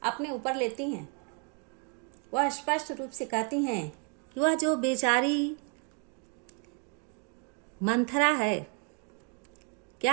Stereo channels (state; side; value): quieter; left; 37.2 dB